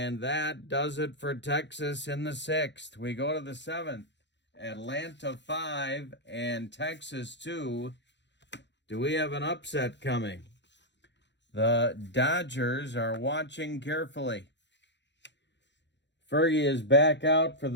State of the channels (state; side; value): late; right; 0.52 ms